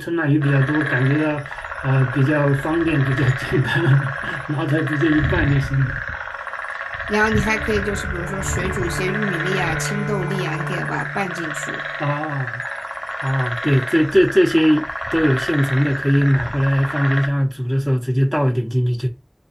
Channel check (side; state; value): both; identical; correlation 1.00